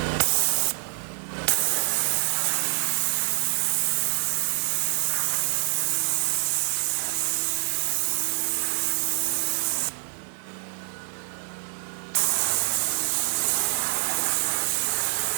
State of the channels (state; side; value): silent; left; 61 dB below the other